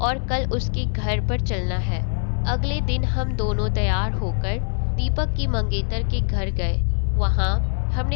कल उसके घर पर चलना है। अगले दिन हम दोनों तैयार होकर दीपक की मंगेतर के घर गए। वहाँ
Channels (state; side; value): silent; right; 61 dB below the other